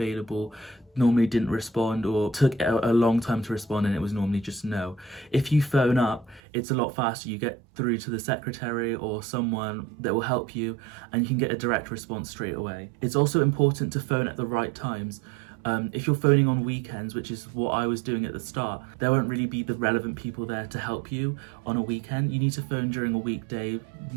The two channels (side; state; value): left; drops out; at 6.4 s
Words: normally didn't respond or took a long time to respond, and it was normally just no. If you phone up, it's a lot faster. You get through to the secretary or someone that will help you, and you can get a direct response straight away. It's also important to phone at the right times. If you're phoning on weekends, which is what I was doing at the start, there won't really be the relevant people there to help you on a weekend. You need to phone during a weekday,